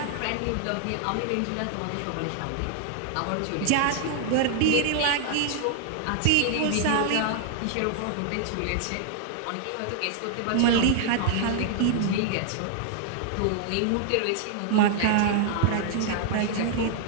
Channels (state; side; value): different; both; correlation 0.00